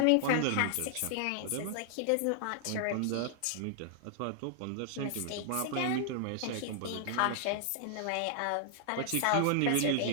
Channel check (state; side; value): different; both; correlation -0.01